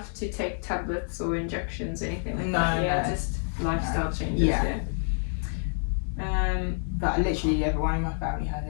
to take tablets or injections, anything like that. Yeah, just lifestyle changes. Yeah. But literally everyone in my family has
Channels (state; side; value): silent; right; digital silence